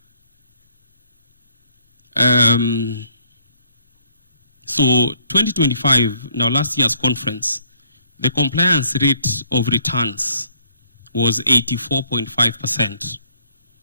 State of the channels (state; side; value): inverted; both; correlation -0.64